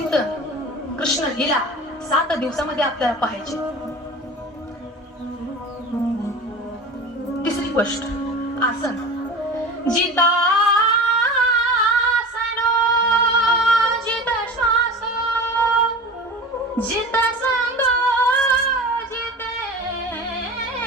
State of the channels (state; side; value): normal; both; correlation 0.34